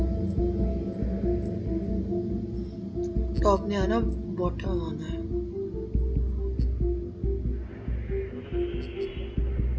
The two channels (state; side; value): identical; both; correlation 1.00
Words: टॉप ने आना, बॉटम आना है।